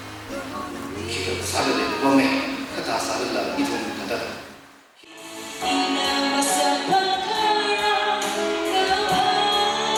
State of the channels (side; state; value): both; identical; correlation 1.00